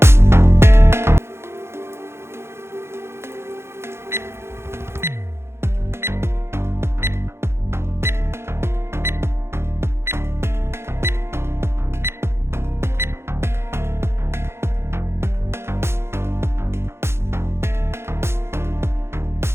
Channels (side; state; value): left; late; 0.12 ms